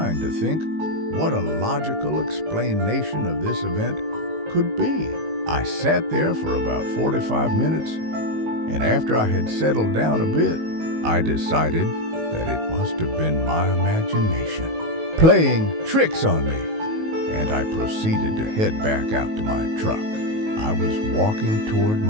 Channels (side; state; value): left; late; 19 ms